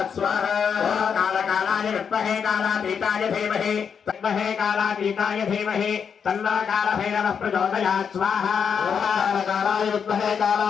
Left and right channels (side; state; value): right; quieter; 6.9 dB